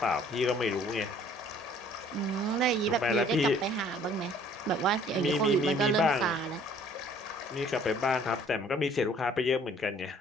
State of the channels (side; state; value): both; normal; correlation 0.56